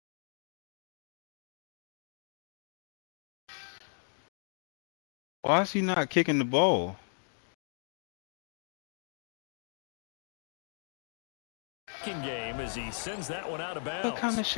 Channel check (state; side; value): silent; right; digital silence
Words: Why is he not kicking the ball? Game as he sends that one out of bounds. What kind of